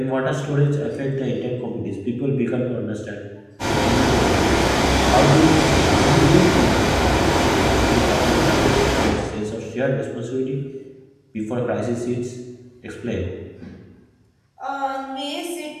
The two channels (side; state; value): both; identical; correlation 1.00